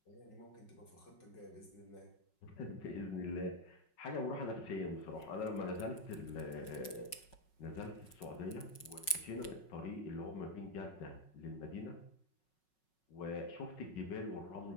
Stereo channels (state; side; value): late; right; 5.4 ms